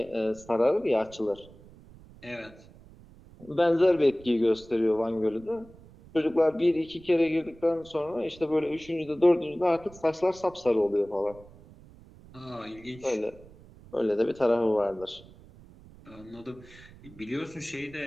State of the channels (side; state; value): right; noise; rumble, 22 dB below the sound